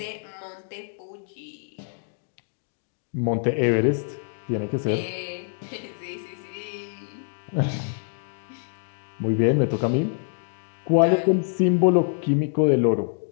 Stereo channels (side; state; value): right; silent; digital silence